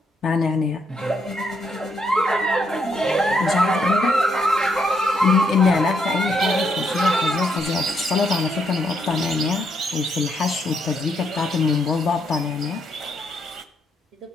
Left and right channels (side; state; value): both; normal; correlation 0.76